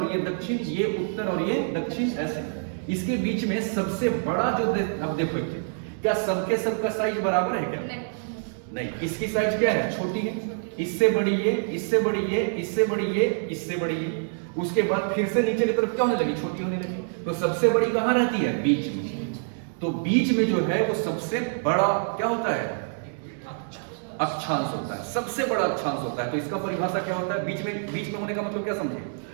ये दक्षिण, ये उत्तर और ये दक्षिण, ऐसे। इसके बीच में सबसे बड़ा जो अब देखो क्या सबके सबका साइज बराबर है क्या? नहीं, इसकी साइज क्या है? छोटी है, इससे बड़ी ये, इससे बड़ी ये, इससे बड़ी ये, इससे बड़ी ये, उसके बाद फिर से नीचे की तरफ क्या होने लगी? छोटी होने लगी। तो सबसे बड़ी कहां रहती है? बीच में। तो बीच में जो है वो सबसे बड़ा क्या होता है? अक्षांश होता है, सबसे बड़ा अक्षांश होता है। तो इसका परिभाषा क्या होता है? बीच में होने का मतलब क्या समझे?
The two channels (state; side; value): silent; left; digital silence